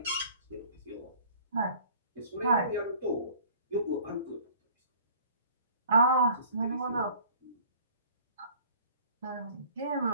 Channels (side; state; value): both; inverted; correlation -0.50